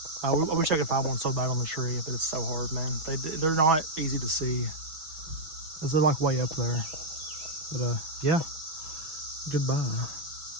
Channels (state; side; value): late; left; 6.1 ms